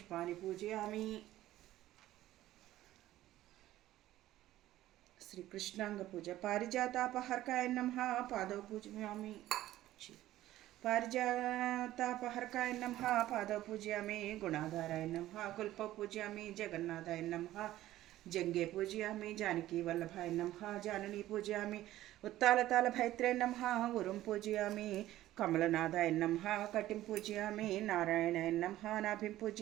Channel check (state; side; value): quieter; left; 14.6 dB